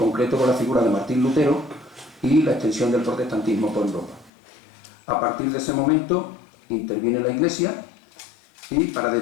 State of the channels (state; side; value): drops out; right; at 4.3 s